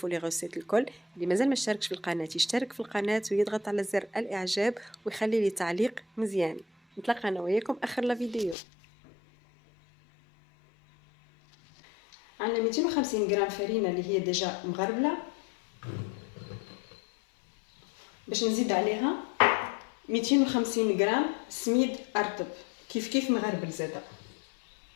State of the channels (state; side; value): drops out; right; at 8.6 s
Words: لي غوسيت الكل. اللي مازال ما اشتركش في القناه يشترك في القناه ويضغط على زر الاعجاب ويخلي لي تعليق مزيان. نتلاقى انا وياكم اخر لا فيديو. عندنا 250 غرام فرينه اللي هي ديجا مغربله، باش نزيد عليها 250 غرام سميد ارطب كيف مغربل زاده،